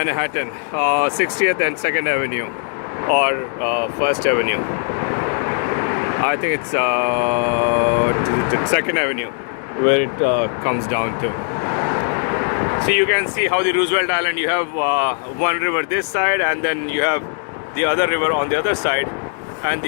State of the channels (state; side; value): silent; right; 60 dB below the other